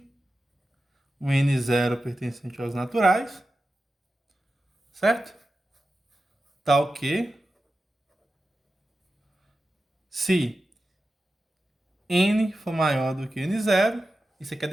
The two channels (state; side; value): normal; both; correlation 0.92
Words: um n0 pertencente aos naturais, certo? Tal que se n for maior do que n0, isso aqui é a